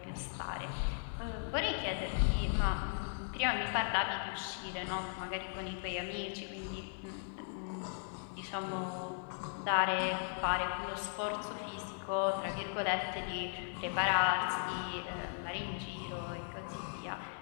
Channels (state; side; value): silent; right; digital silence